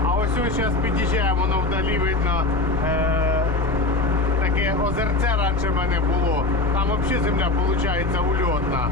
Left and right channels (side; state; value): right; quieter; 3.5 dB